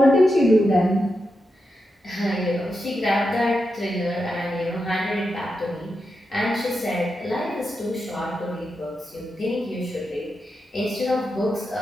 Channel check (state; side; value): normal; both; correlation 0.87